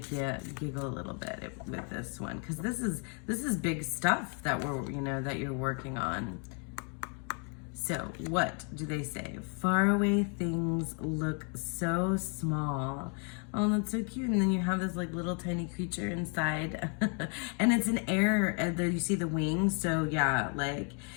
you giggle a little bit with this one, because this is big stuff that that you're working on. So what do they say? Faraway things look so small. Oh, that's so cute. And then you have this like little tiny creature inside. And it's an air, and there you see the wings. So yeah,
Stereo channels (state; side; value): quieter; right; 39.3 dB